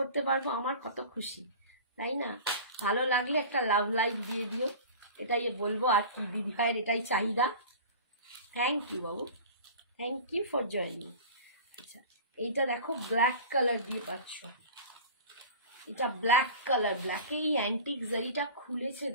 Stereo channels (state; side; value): inverted; both; correlation -0.37